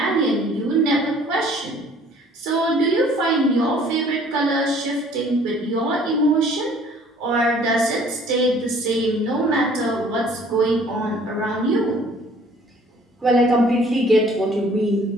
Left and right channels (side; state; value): both; normal; correlation 0.55